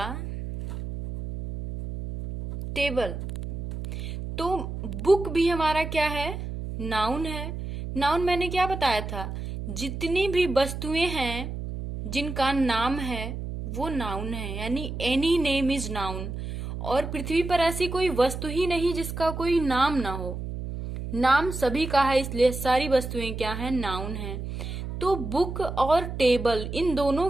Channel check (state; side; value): noise; right; hum, 6 dB below the sound